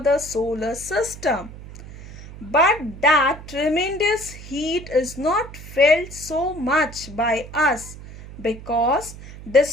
solar system. But that tremendous heat is not felt so much by us because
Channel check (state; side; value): noise; right; hum, 15 dB below the sound